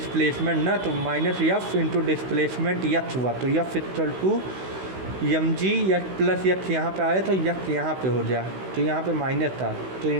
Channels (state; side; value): late; left; 16 ms